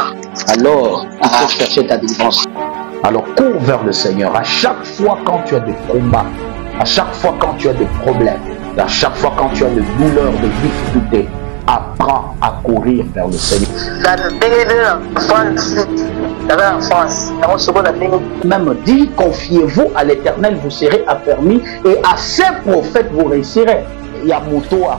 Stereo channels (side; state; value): left; quieter; 36.0 dB